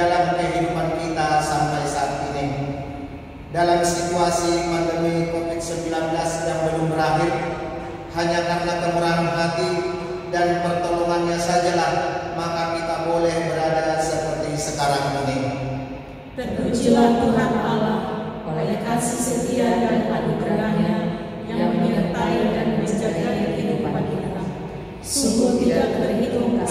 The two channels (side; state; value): both; identical; correlation 1.00